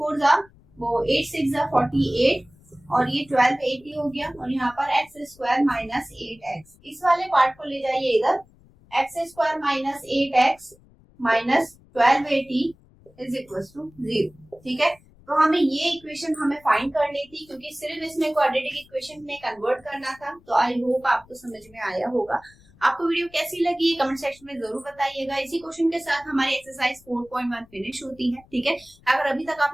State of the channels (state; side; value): noise; left; rumble, 28 dB below the sound